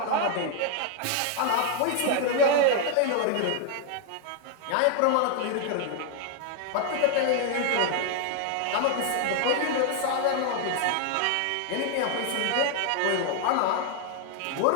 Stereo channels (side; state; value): both; different; correlation 0.00